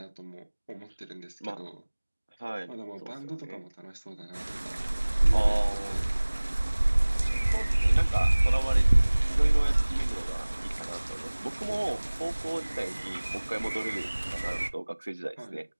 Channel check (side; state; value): both; inverted; correlation -1.00